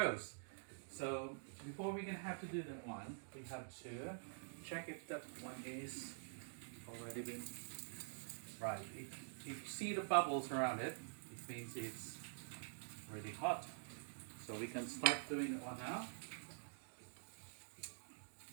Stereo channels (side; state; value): left; silent; digital silence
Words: So before we're gonna have to do that one, we have to check if that one is already been right. If you see the bubbles around it, it means it's already hot. So we can start doing that one now.